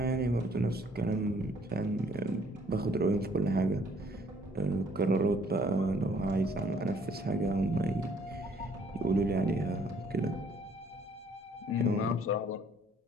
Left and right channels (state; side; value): normal; both; correlation 0.62